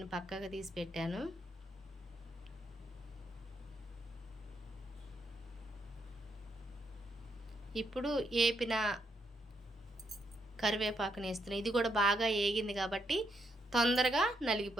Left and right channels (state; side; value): normal; both; correlation 0.78